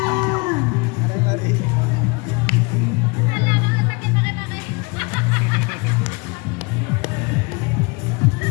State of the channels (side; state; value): right; quieter; 28.7 dB